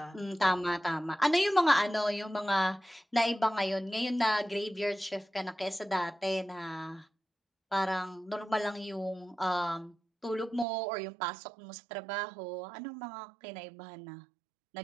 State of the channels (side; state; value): left; drops out; at 10.7 s